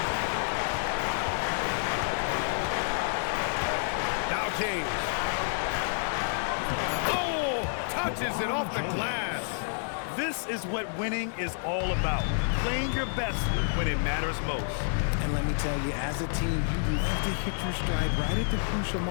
Now James. Oh, touches it off the glass. This is what winning is all about. Playing your best when it matters most. And let me tell you, as a team, you love to hit your stride right at the crucial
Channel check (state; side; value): silent; right; digital silence